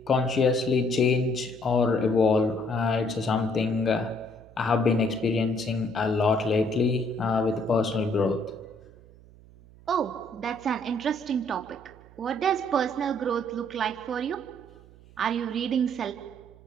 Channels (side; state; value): right; noise; hum, 23 dB below the sound